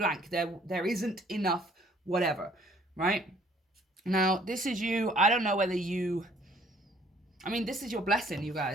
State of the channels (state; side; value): normal; both; correlation 0.60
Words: There isn't enough whatever, right? Now, this is you. I don't know whether you... I mean, this is your blessing, you